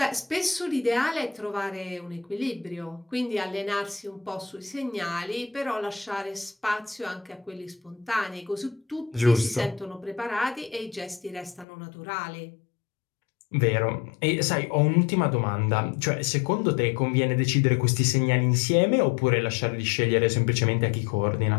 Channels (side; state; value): right; drops out; at 11.7 s